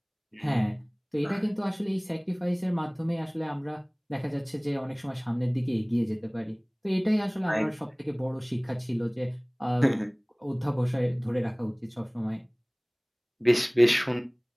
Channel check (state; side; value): identical; both; correlation 1.00